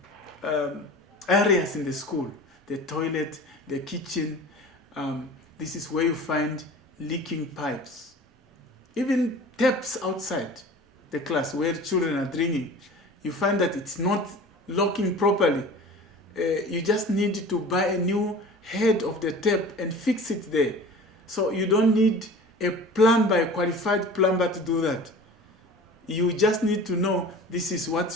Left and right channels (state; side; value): normal; both; correlation 0.40